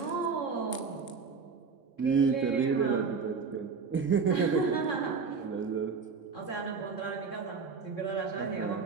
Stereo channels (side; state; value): left; quieter; 5.2 dB